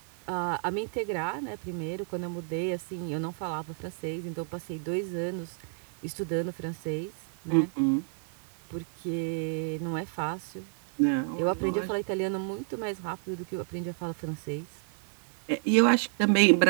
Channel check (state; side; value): silent; left; 57 dB below the other